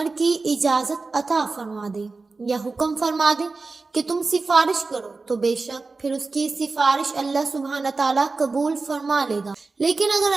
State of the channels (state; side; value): quieter; left; 3.9 dB